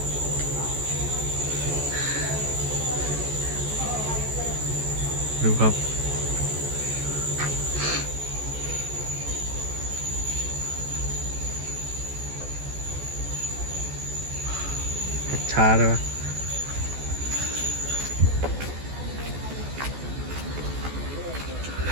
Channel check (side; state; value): left; late; 14 ms